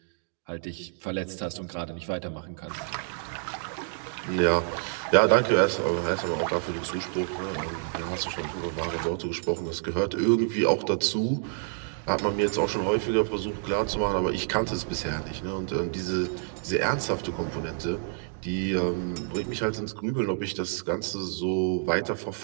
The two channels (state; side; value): silent; left; 55 dB below the other